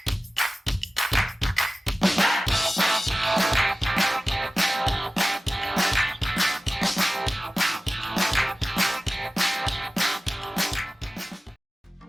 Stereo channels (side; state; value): both; normal; correlation 0.96